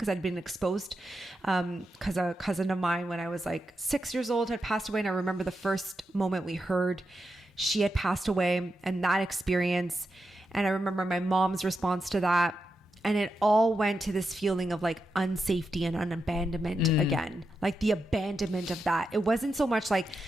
I'd been exposed because a cousin of mine when I was like 6 years old had passed away. And I remember the first moment we heard she had passed away and that experience. And I remember my mom's response to that. And it all went to this feeling of like unsafety and abandonment again, like the abandonment of that. It wasn't so much like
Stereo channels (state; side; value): normal; both; correlation 0.87